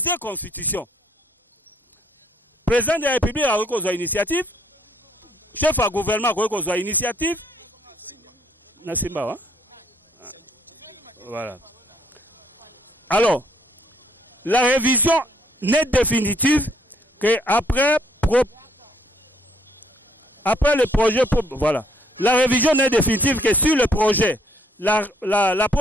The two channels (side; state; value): both; normal; correlation 0.65